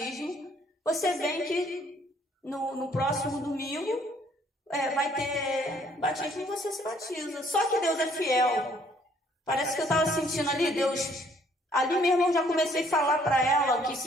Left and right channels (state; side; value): normal; both; correlation 0.63